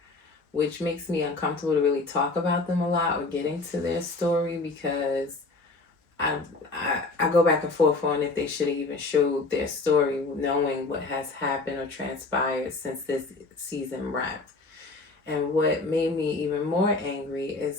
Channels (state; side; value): quieter; right; 3.5 dB